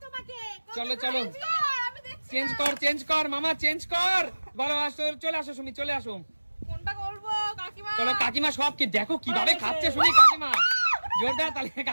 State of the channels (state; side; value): inverted; both; correlation -1.00